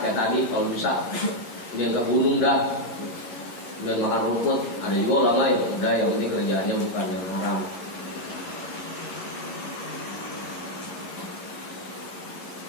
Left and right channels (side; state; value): right; late; 11 ms